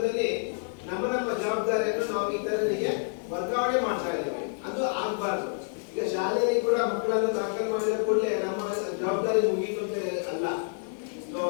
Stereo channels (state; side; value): silent; right; digital silence